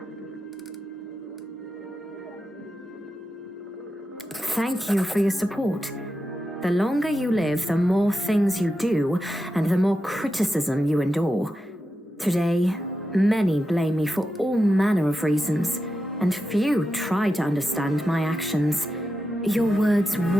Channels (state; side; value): normal; both; correlation 0.89